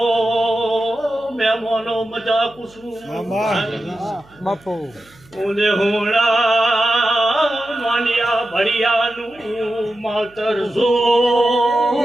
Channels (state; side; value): noise; right; hum, 28 dB below the sound